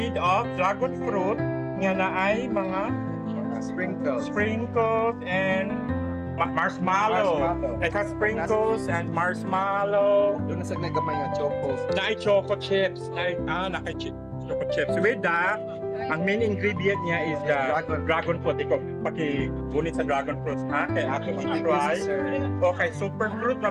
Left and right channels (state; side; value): identical; both; correlation 1.00